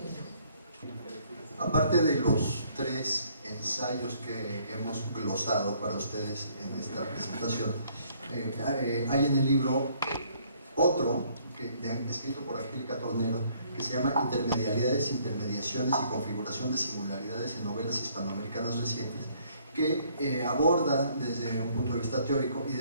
Aparte de los tres ensayos que hemos glosado para ustedes en esta presentación, hay en el libro otro, escrito por Angélica Tornero, que se llama Intermedialidades, Intermediaciones y Configuración de Singularidades en Novelas Hispanoamericanas Recientes, que aborda desde un punto de vista teórico y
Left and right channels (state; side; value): inverted; both; correlation -0.64